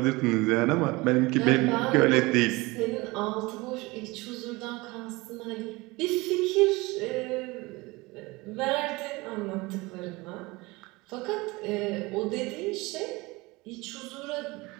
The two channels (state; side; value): quieter; left; 23.0 dB